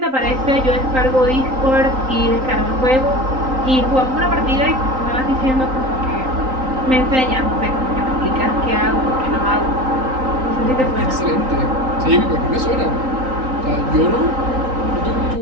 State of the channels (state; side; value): late; left; 3.9 ms